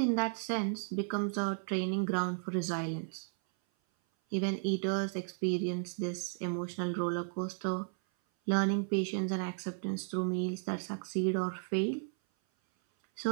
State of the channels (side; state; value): left; silent; 55 dB below the other